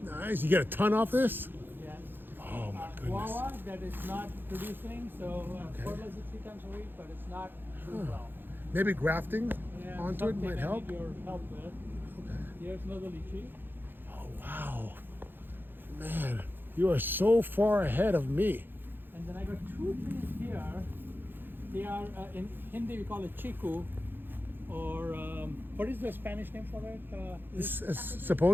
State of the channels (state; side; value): late; left; 0.097 ms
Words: nice. You get a ton off this? Yes. Oh my goodness! Guava that is not producing, so fertilizer 3 times a week, but it's not doing well. Maybe grafting Yeah, onto it something might I help. need your help with. Here's another lychee. Oh wow, man, you are so far ahead of me. And then I got 2 trees here. They are, in Hindi we call it chiku, or what is the Spanish name for it?